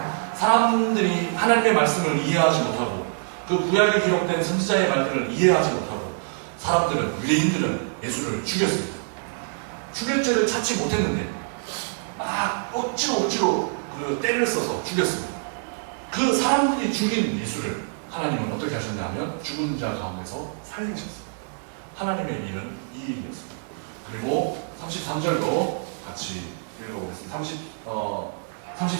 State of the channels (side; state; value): left; silent; digital silence